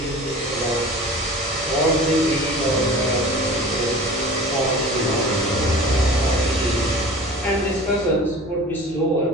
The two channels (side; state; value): both; normal; correlation 0.39